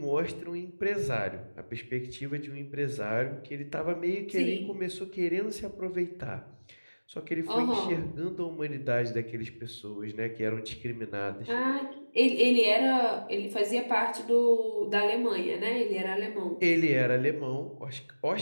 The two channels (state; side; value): inverted; both; correlation -1.00